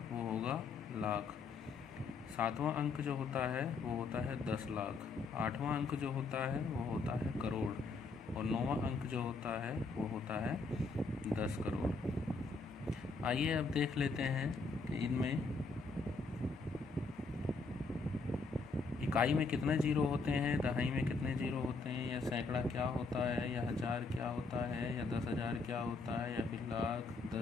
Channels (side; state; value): right; quieter; 4.0 dB